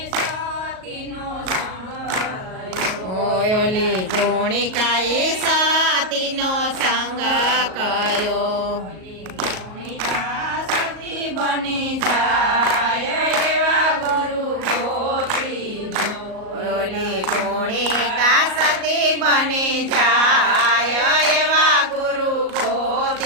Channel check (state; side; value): late; left; 38 ms